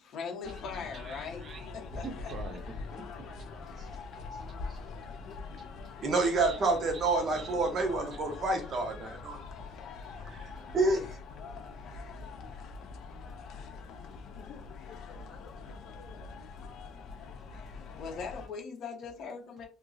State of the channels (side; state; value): both; normal; correlation 0.53